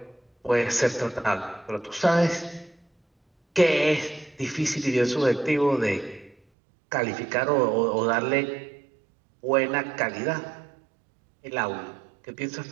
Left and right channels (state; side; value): drops out; left; at 6.4 s